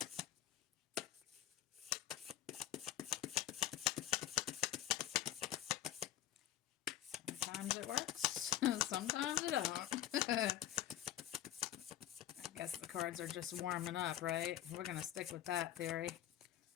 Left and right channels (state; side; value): quieter; right; 12.6 dB